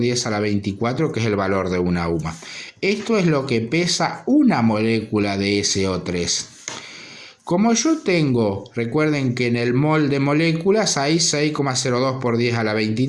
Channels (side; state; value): both; identical; correlation 1.00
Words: a la 24, que es el valor de una UMA. Esto es lo que pesa una molécula de SO3. Como yo tengo, recuerden que en el mol de moléculas hay 6,02 por 10 a la